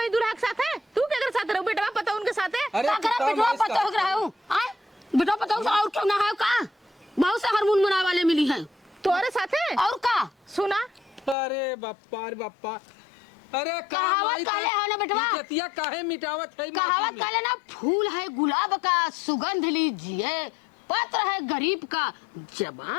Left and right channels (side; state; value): right; drops out; at 11.4 s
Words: दूल्हा के साथ है, तू केकर साथ रहू बेटा पता उनके साथ है? अरे का तू करे काम बिटवा है इसका। पता हो रहा हूं आए बिटवा पता हो और क्यों ना है का, बहुत से हारमोन मना वाले मिली है तोरे साथ है और का सुना अरे बापा रे बापा, अरे का कहावत माई काले है ना बेटवा? इज्जतिया काहे मिटावत है? कहावत काले ना, फूल है गुलाब का सुगंध लीजिए, पत्र है गरीब का